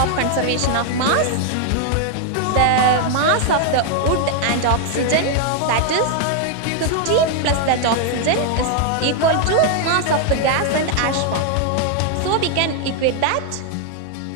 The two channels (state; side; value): different; both; correlation 0.00